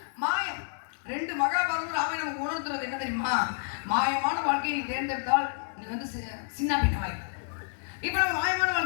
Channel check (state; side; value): silent; right; digital silence